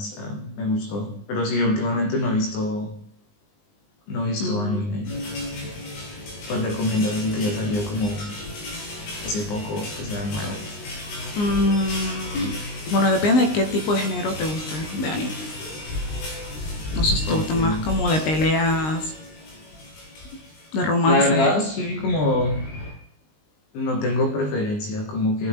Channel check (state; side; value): late; right; 19 ms